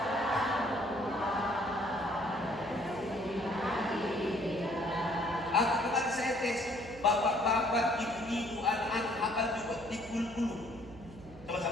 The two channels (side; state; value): right; noise; hum, 19 dB below the sound